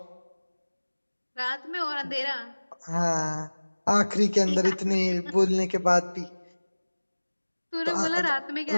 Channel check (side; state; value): both; inverted; correlation -1.00